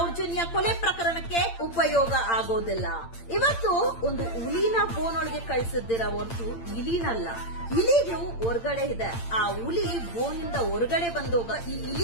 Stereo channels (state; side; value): late; right; 8.8 ms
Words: ಕೊಲೆ ಪ್ರಕರಣಕ್ಕೆ ಉಪಯೋಗ ಆಗೋದಿಲ್ಲ. ಇವತ್ತು ಒಂದು ಹುಲಿನ ಬೋನೊಳಗೆ ಕಳಿಸಿದ್ದೀರ ಹೊರತು ಇಲಿನಲ್ಲ. ಇಲಿಗಳು ಹೊರಗಡೆ ಇದೆ. ಆ ಹುಲಿ ಬೋನಿಂದ ಹೊರಗಡೆ ಬಂದೋಗ ಈ